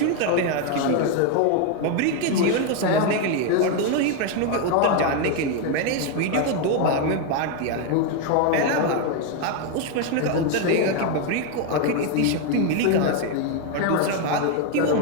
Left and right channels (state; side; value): different; both; correlation 0.01